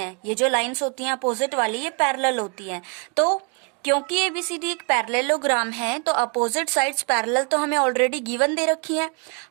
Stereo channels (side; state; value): left; quieter; 36.1 dB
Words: ये जो लाइंस होती हैं अपोजिट वाली ये पैरेलल होती हैं। तो क्योंकि ABCD एक पैरेललोग्राम है तो अपोजिट साइड्स पैरेलल तो हमें ऑलरेडी गिवन दे रखी है,